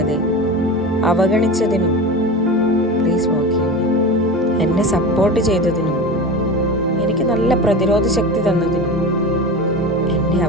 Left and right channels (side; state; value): both; normal; correlation 0.29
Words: അവഗണിച്ചതിനും പ്ലീസ് ഫോർഗീവ് മീ. എന്നെ സപ്പോർട്ട് ചെയ്തതിനും എനിക്ക് നല്ല പ്രതിരോധ ശക്തി തന്നതിനും എൻ്റെ